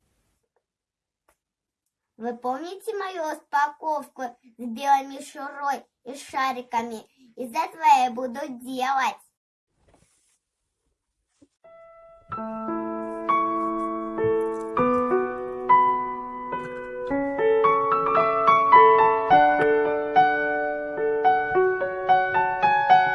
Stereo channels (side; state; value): both; identical; correlation 1.00